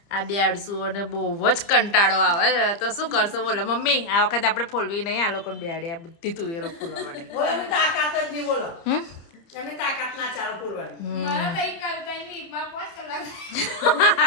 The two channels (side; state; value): right; late; 30 ms